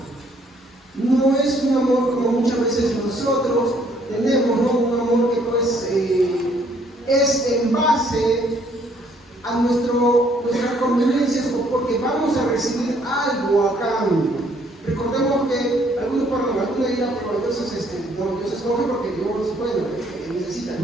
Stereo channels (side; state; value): both; normal; correlation 0.65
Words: No es un amor como muchas veces nosotros tenemos, ¿no? Un amor que pues es en base a nuestras conveniencias o porque vamos a recibir algo a cambio. Recordemos que algunos dirán, pero Dios escoge porque Dios, necesita.